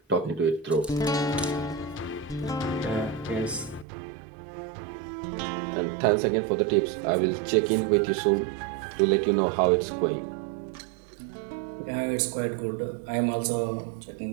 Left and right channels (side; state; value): left; drops out; at 3.9 s